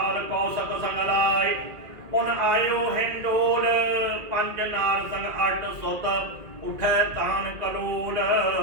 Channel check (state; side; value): late; left; 2.0 ms